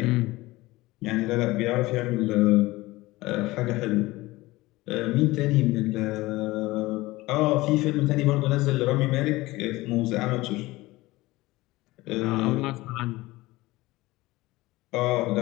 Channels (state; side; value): quieter; right; 19.7 dB